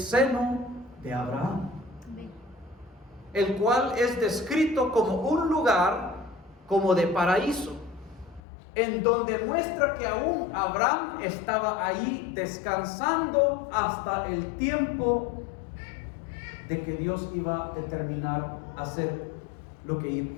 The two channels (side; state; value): right; drops out; at 8.4 s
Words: de Abraham, el cual es descrito como un lugar como de paraíso, en donde muestra que aún Abraham estaba ahí descansando hasta el tiempo de que Dios iba a determinar hacer lo que